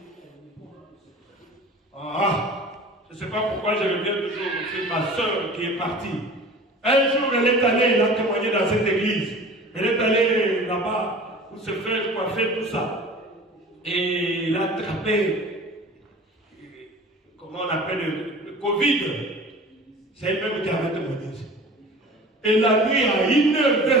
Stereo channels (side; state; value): both; normal; correlation 0.41